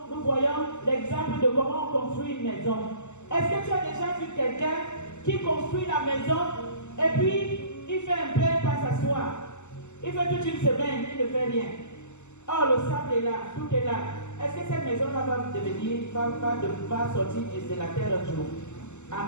voyons l'exemple de comment on construit une maison. Est-ce que tu as déjà vu quelqu'un qui construit la maison et puis il fait un peu, il passe s'asseoir. Il fait toute une semaine, il ne fait rien. Oh, le sable est là, tout est là. Est-ce que cette maison-là va sortir de la terre un jour?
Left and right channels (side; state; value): right; late; 0.83 ms